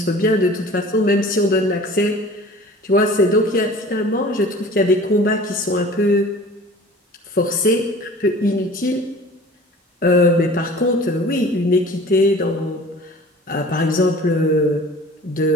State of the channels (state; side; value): normal; both; correlation 0.44